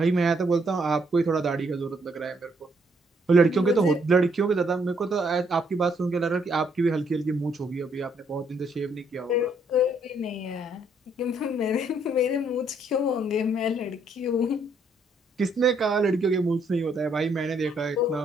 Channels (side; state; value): both; normal; correlation 0.70